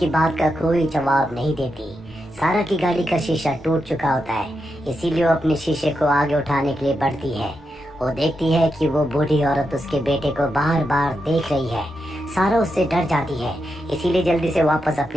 बात का कोई जवाब नहीं देती। सारा की गाड़ी का शीशा टूट चुका होता है, इसीलिए वो अपने शीशे को आगे उठाने के लिए बढ़ती है। वो देखती है कि वो बूढ़ी औरत उसके बेटे को बार बार देख रही है। सारा उससे डर जाती है, इसीलिए जल्दी से वापस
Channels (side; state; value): both; normal; correlation 0.86